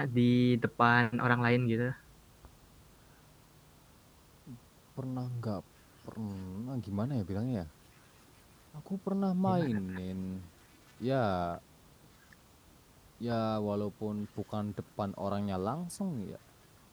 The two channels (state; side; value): identical; both; correlation 1.00